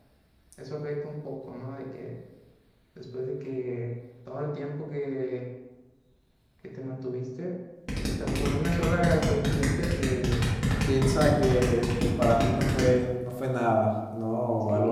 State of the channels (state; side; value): identical; both; correlation 1.00